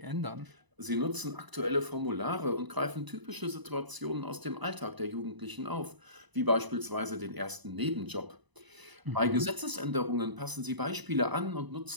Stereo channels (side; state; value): left; late; 1.0 ms